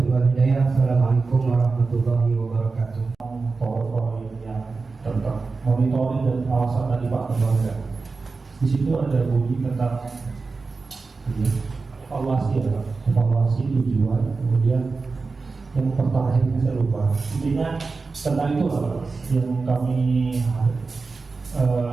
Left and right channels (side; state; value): left; quieter; 4.2 dB